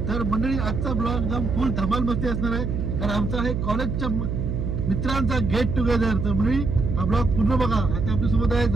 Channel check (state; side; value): noise; right; hum, 2 dB below the sound